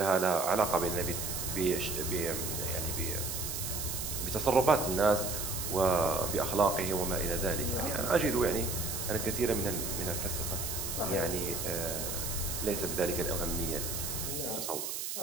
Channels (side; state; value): right; noise; hiss, 4 dB below the sound